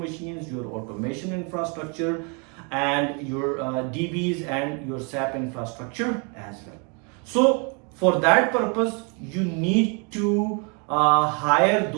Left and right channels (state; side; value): quieter; left; 35.2 dB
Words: your automation infrastructure, and your DBs and your SAP infrastructure as well. So for that purpose, you need to hire